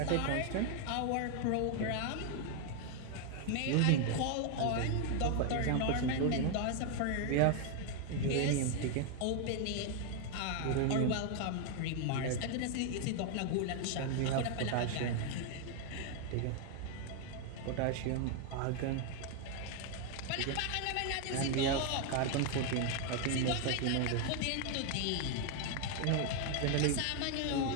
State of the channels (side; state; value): both; different; correlation 0.00